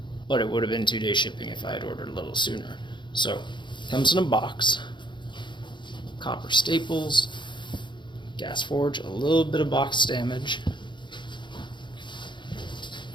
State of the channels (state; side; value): late; right; 0.23 ms